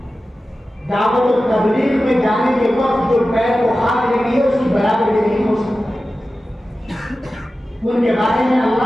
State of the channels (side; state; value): both; normal; correlation 0.94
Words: दावत और तबलीग में जाने के वक्त जो पैर को हाथ लगी है उसकी बराबरी नहीं हो सकती। उनके बारे में